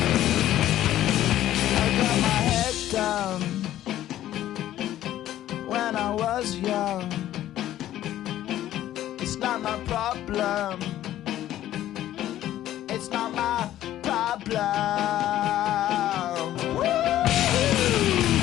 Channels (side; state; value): right; quieter; 13.0 dB